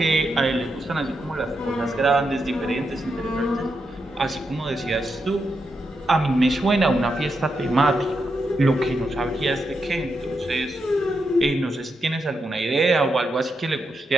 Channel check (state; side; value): normal; both; correlation 0.84